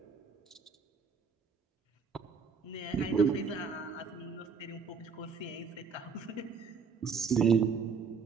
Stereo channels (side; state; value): left; quieter; 5.4 dB